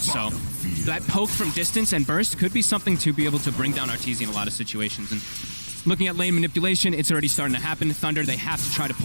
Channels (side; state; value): both; inverted; correlation -1.00